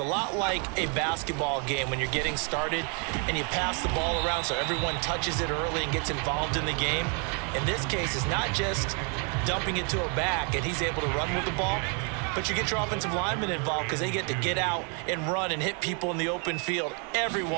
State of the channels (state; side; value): quieter; left; 37.3 dB